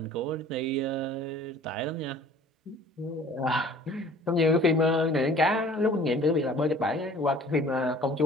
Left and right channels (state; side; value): normal; both; correlation 0.50